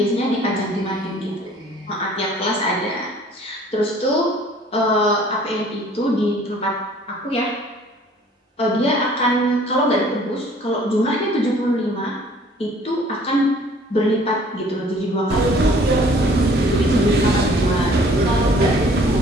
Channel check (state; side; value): normal; both; correlation 0.54